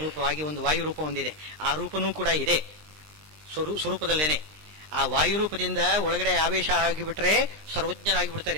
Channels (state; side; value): late; left; 20 ms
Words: ಒಂದು ವಾಯುರೂಪ ಒಂದಿದೆ. ಆ ರೂಪನೂ ಕೂಡ ಇದೆ ಸ್ವರೂಪದಲ್ಲೇನೆ. ಆ ವಾಯುರೂಪದಿಂದ ಒಳಗಡೆ ಆವೇಶ ಆಗಿಬಿಟ್ರೆ